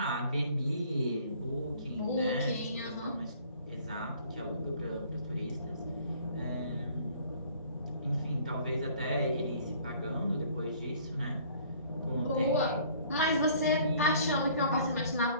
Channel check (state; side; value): inverted; both; correlation -0.55